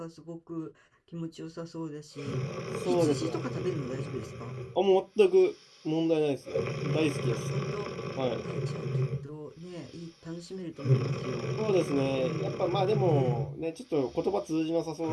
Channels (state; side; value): identical; both; correlation 1.00